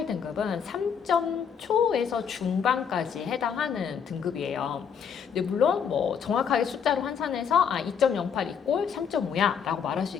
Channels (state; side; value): quieter; right; 7.2 dB